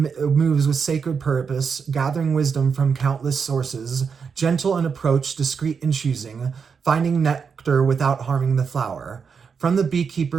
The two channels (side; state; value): left; quieter; 6.0 dB